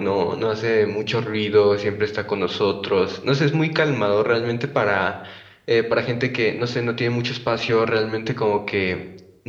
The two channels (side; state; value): both; identical; correlation 1.00